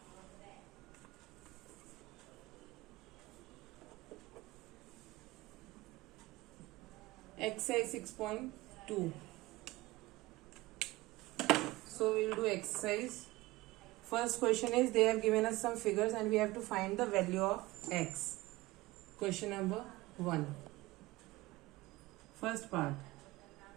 exercise 6.2. So we will do exercise. First question is, they have given us some figures and we have to find the value of x. Question number 1. First part.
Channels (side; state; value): left; quieter; 19.6 dB